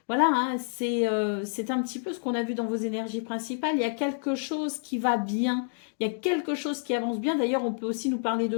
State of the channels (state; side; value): silent; right; digital silence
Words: voilà, hein, c'est un petit peu ce qu'on a vu dans vos énergies principales. Il y a quelque chose qui va bien, il y a quelque chose qui avance bien. D'ailleurs, on peut aussi nous parler